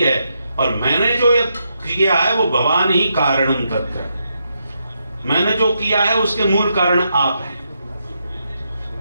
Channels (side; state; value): both; inverted; correlation -0.81